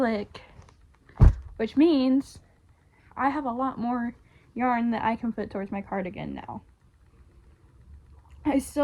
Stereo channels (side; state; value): both; identical; correlation 1.00